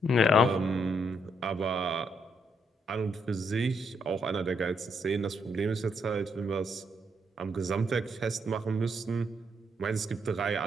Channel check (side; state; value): both; normal; correlation 0.75